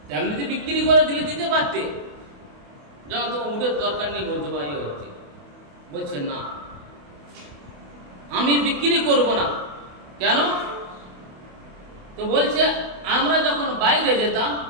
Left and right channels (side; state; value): left; late; 28 ms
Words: তেমনি বিক্রি করে দিলে দিতে পারতে, যখন তোমার উটের দরকার নেই বলছে ভাই হচ্ছে। বলছে না, আমি বিক্রি করব না। কেন? তো বলছে আমরা যখন বাইরে যেতাম,